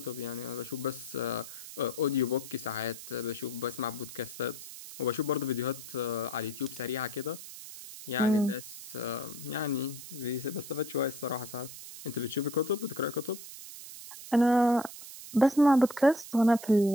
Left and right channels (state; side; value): noise; right; hiss, 13 dB below the sound